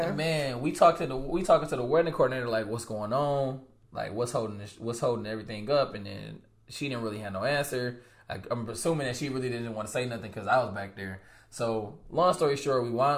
And man, we talking to the wedding coordinator, like, what's going on? Like, what's holding everything up? And then she didn't really have no answer. I'm assuming that she really didn't want to say nothing because I was back there. So, long story short, we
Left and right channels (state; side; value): identical; both; correlation 1.00